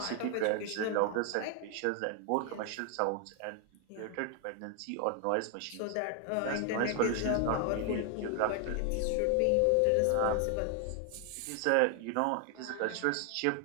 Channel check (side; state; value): both; different; correlation 0.00